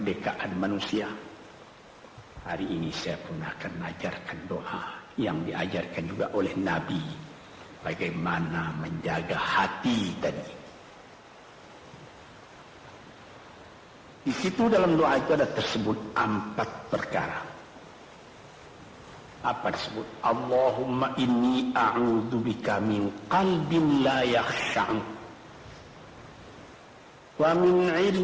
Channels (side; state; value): both; identical; correlation 1.00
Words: manusia, hari ini saya pun akan mengajarkan doa yang diajarkan juga oleh Nabi. Bagaimana menjaga hati tadi. Di situ dalam doa itu ada tersebut 4 perkara. Apa disebut? Allahumma inni a'udzubika min qalbin la yakhsha'u wa min